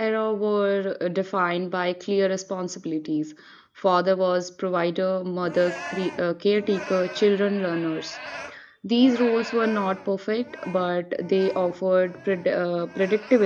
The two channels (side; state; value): both; identical; correlation 1.00